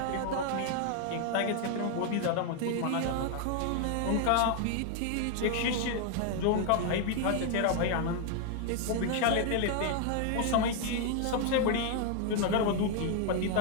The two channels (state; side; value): different; both; correlation 0.00